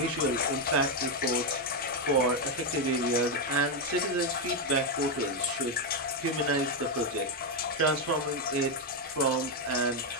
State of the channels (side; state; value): both; normal; correlation 0.04